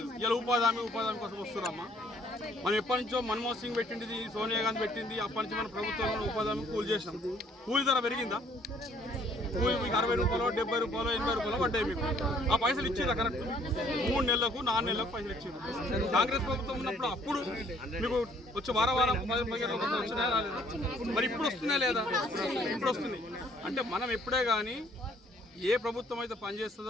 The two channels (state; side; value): normal; both; correlation 0.61